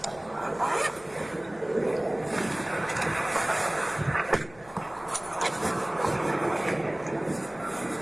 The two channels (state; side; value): noise; left; hum, 24 dB below the sound